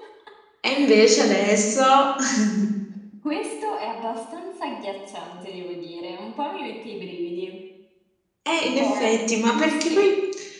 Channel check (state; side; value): identical; both; correlation 1.00